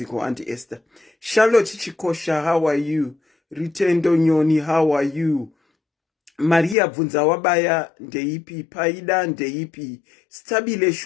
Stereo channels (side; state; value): right; drops out; at 6.8 s